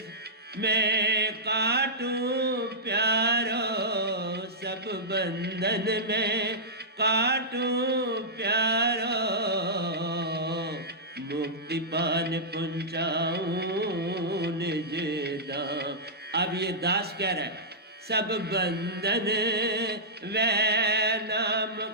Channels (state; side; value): normal; both; correlation -0.14